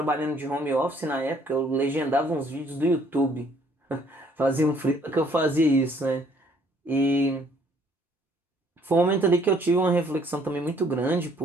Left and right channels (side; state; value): both; normal; correlation 0.62